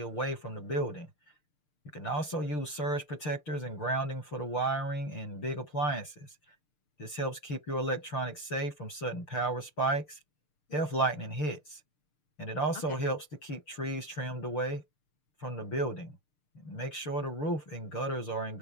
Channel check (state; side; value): late; right; 6.7 ms